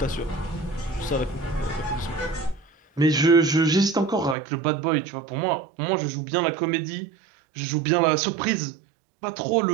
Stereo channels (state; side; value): drops out; left; at 4.4 s